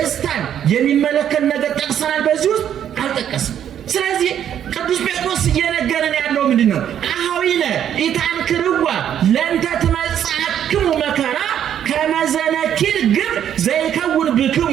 የሚመለከት ነገር ጠቅሰናል። በዚህ ውስጥ አልጠቀስም። ስለዚህ ቅዱስ ጴጥሮስ እየነገረን ያለው ምንድን ነው? አኀዊነ ኢታንክርዋ ለእንተ ትመጽአክሙ መከራ ከመ ዘነኪር ግብር ዘይከውን ብክሙ።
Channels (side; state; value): left; quieter; 9.8 dB